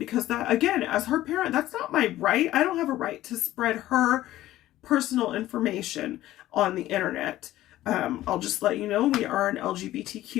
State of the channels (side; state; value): right; quieter; 14.8 dB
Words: that, again, as her parent, that's not my right. I don't have a right to spread her personal information on the internet. I'll just let you know, we are an